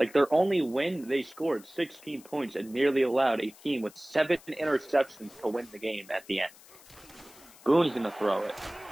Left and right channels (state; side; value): noise; left; hiss, 23 dB below the sound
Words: their only win, they scored 16 points and nearly allowed a team with 7 interceptions to win the game at the end. Boone's going to throw it.